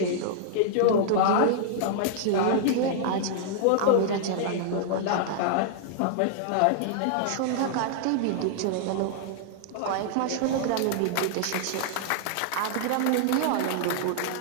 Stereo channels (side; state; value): both; different; correlation -0.01